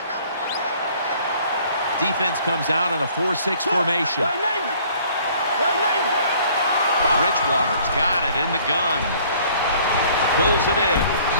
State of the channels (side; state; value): both; inverted; correlation -0.56